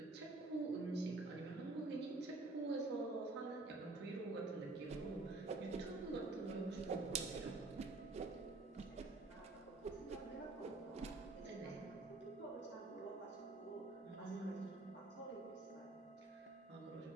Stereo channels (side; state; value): left; quieter; 3.2 dB